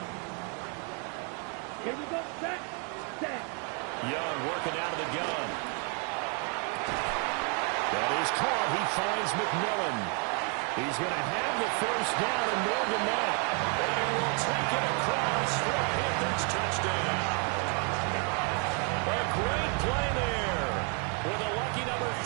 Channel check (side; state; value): left; quieter; 37.8 dB